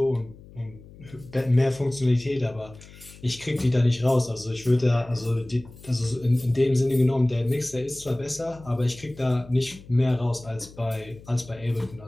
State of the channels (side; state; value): left; noise; hum, 20 dB below the sound